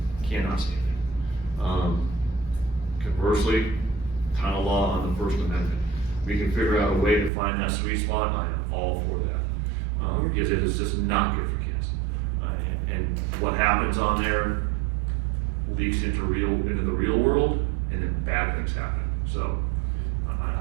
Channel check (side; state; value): left; drops out; at 7.3 s